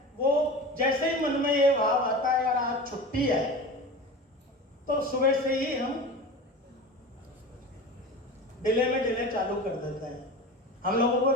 वो जैसे ही मन में ये भाव आता है यार आज छुट्टी है, तो सुबह से ही हम डिले में डिले चालू कर देते हैं। हम लोगों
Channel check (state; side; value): normal; both; correlation 0.31